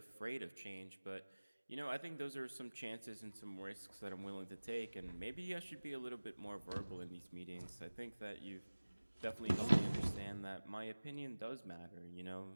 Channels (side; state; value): both; inverted; correlation -1.00